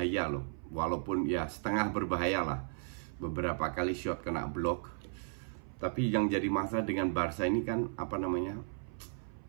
loh. Walaupun ya setengah berbahaya lah. Beberapa kali shot kena blok. Tapi yang jadi masalah dengan Barca ini kan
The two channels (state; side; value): silent; left; 54 dB below the other